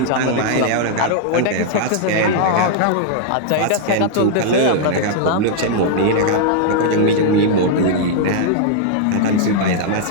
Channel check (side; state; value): both; different; correlation -0.01